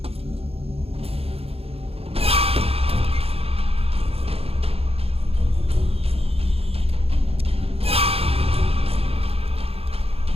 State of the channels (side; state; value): left; late; 0.28 ms